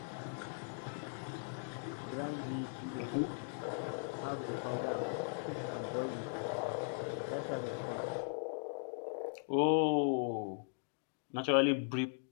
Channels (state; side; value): silent; right; digital silence